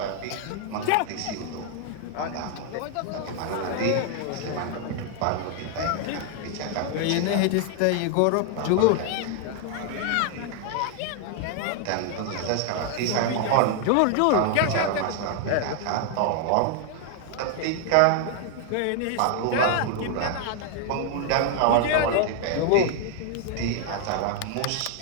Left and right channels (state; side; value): different; both; correlation 0.00